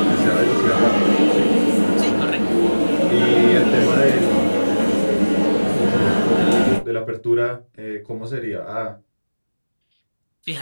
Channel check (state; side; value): inverted; both; correlation -1.00